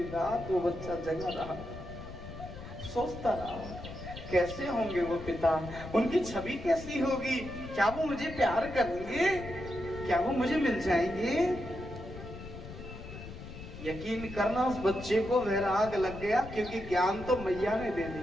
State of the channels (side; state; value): left; noise; rumble, 12 dB below the sound